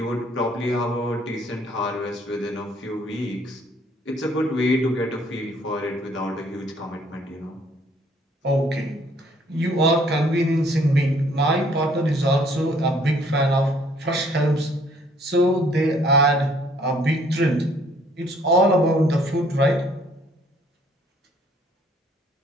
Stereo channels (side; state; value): both; normal; correlation 0.61